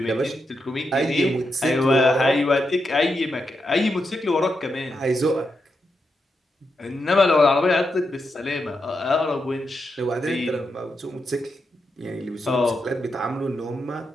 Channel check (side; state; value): both; normal; correlation 0.85